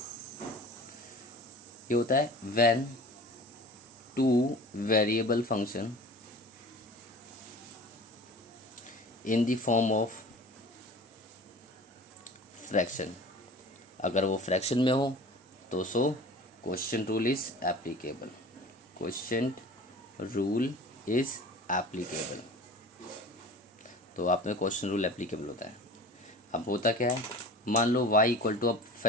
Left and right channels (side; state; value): both; normal; correlation 0.40